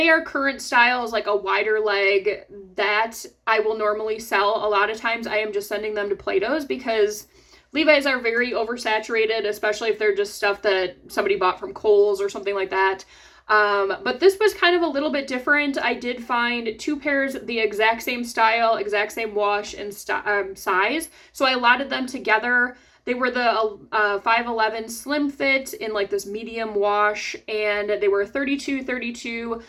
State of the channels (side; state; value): both; identical; correlation 1.00